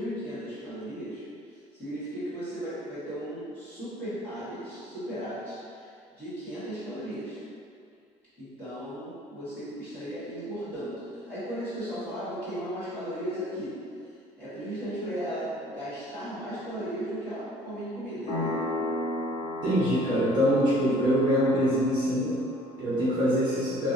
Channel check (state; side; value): normal; both; correlation 0.54